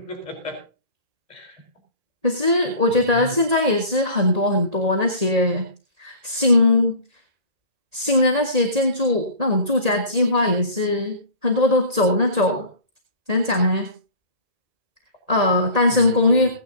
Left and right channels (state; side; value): late; left; 1.8 ms